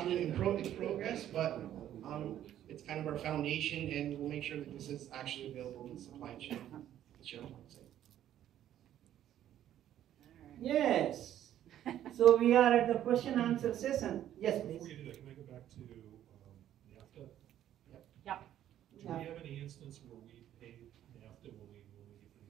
in progress, but it's kind of our foundation, and we'll make sure that this is actually available in the supply chain. Yes. So we are at the question answer session. Yes, Before please. you do that, can I go back to NAFTA? Yeah. Do we have any instance where we paid NAFTA when we get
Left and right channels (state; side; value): quieter; left; 11.5 dB